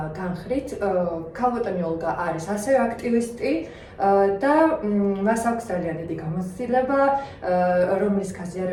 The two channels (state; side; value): identical; both; correlation 1.00